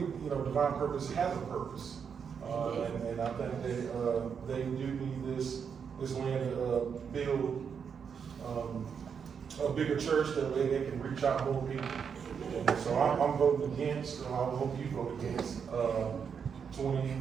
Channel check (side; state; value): left; quieter; 6.8 dB